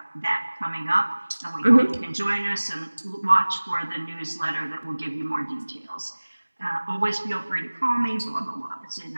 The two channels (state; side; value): inverted; both; correlation -1.00